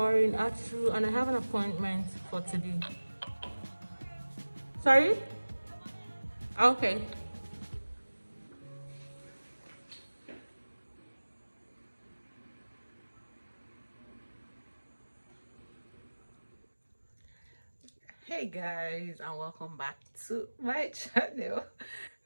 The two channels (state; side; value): inverted; both; correlation -1.00